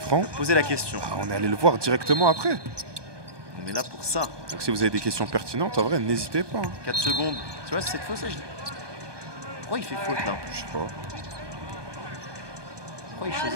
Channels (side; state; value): left; late; 1.2 ms